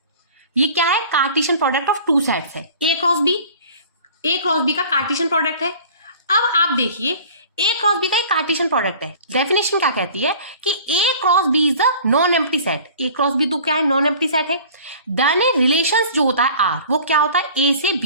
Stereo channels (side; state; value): both; inverted; correlation -0.45